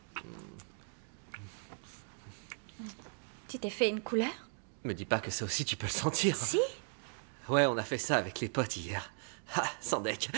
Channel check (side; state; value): left; silent; 53 dB below the other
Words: Tu t'es fait une couleur? Me dis pas que ça aussi tu peux le sentir. Si. Ouais, on a fait ça avec les potes hier. Ah, Sandek,